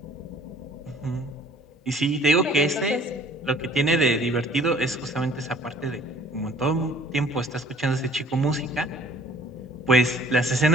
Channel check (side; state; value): both; normal; correlation 0.53